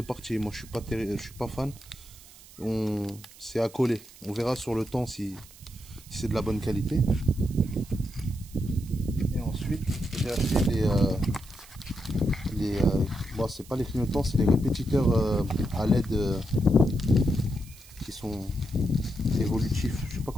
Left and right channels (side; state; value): right; noise; hiss, 21 dB below the sound